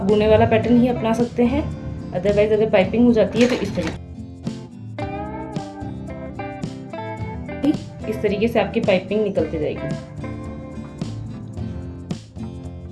गुने वाला पैटर्न ही अपना सकते हैं, अदरवाइज अगर पाइपिंग हो जाती है तो इस तरीके से आपकी पाइपिंग निकलती जाएगी।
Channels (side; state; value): both; identical; correlation 1.00